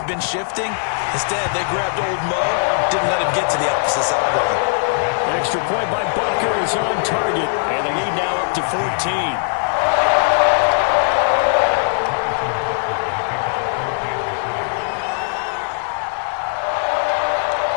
been shifting. Instead, they grabbed old Mo, didn't let him get to the opposite sideline. Extra point by Butker is on target, and the lead now up to 14.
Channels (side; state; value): right; silent; 66 dB below the other